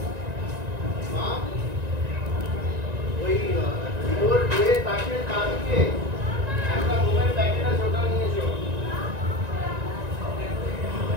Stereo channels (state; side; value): late; left; 1.9 ms